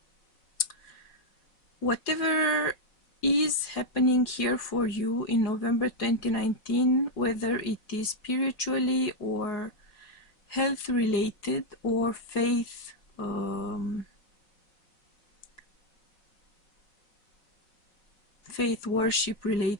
whatever is happening here for you in November 2019, whether it is spiritually or health related or faith worship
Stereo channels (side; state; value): right; late; 4.8 ms